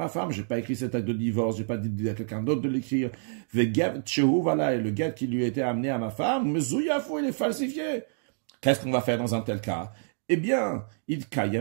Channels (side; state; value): left; silent; digital silence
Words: femme, j'ai pas écrit cet acte de divorce, j'ai pas dit à quelqu'un d'autre de l'écrire. Vegev tchehu, voilà, et le guet qui lui a été amené à ma femme, mezouyafu, il est falsifié. Qu'est-ce qu'on va faire dans un tel cas? Eh bien, il